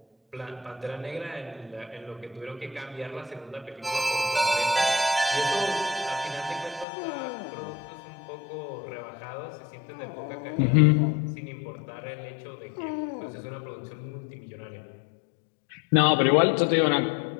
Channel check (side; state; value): right; drops out; at 6.9 s